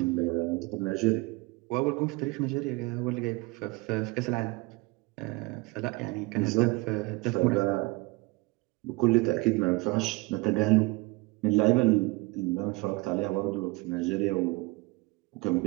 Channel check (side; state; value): left; quieter; 23.7 dB